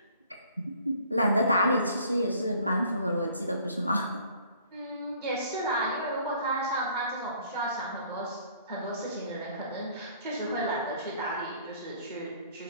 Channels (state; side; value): inverted; both; correlation -0.56